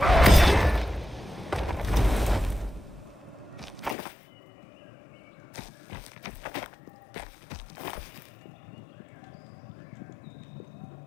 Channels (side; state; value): right; drops out; at 4.0 s